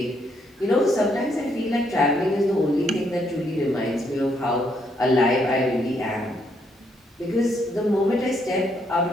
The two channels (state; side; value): normal; both; correlation 0.73